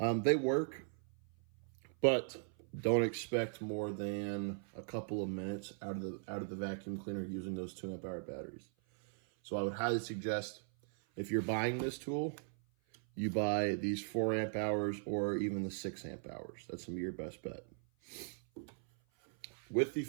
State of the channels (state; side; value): silent; left; 52 dB below the other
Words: work, but don't expect more than a couple of minutes out of the vacuum cleaner using those 2 amp hour batteries. So I would highly suggest, if you're buying this tool, you buy these 4 amp hours or even the 6 amp hours. That's gonna be your best bet. With the